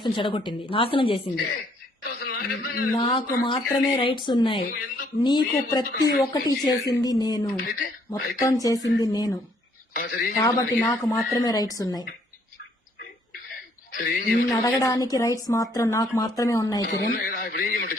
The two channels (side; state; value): both; normal; correlation 0.66